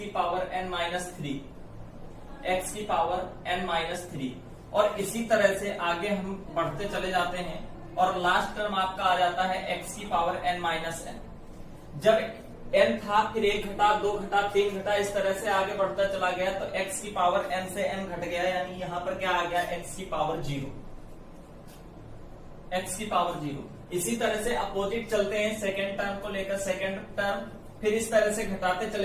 पावर n माइनस 3, x की पावर n माइनस 3, और इसी तरह से आगे हम बढ़ते चले जाते हैं और लास्ट टर्म आपका आ जाता है x की पावर n माइनस n। जब n था फिर 1 घटा, 2 घटा, 3 घटा, इस तरह से आगे बढ़ता चला गया तो x की पावर n से n घट गया, यानी यहां पर क्या आ गया, x की पावर 0, x की पावर 0। इसी तरह से अपोजिट चलते हैं सेकेंड टर्म को लेकर, सेकेंड टर्म फिर इस तरह से घटाते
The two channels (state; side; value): identical; both; correlation 1.00